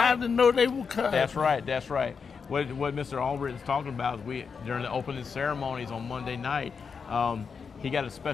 I didn't know they were coming. That's right. That's right. What Mr. Albritton's talking about is during the opening ceremonies on Monday night, he got a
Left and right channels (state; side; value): quieter; right; 5.7 dB